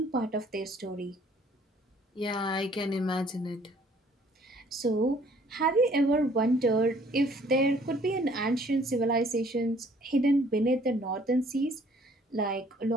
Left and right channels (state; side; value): normal; both; correlation 0.59